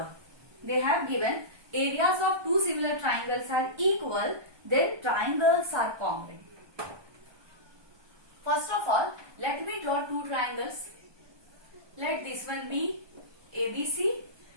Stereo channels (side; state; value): left; late; 1.2 ms